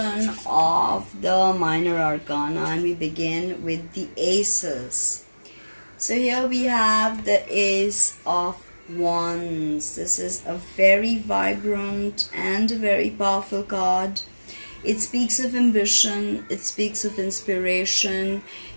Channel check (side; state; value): both; inverted; correlation -1.00